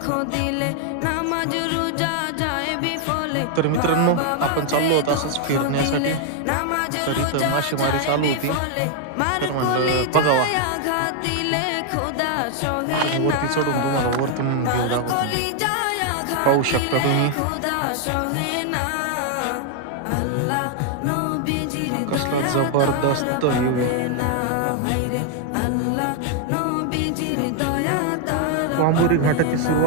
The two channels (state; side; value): different; both; correlation 0.00